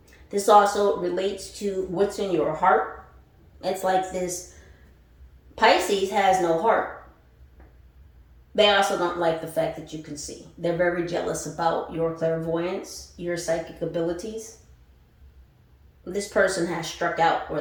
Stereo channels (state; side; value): identical; both; correlation 1.00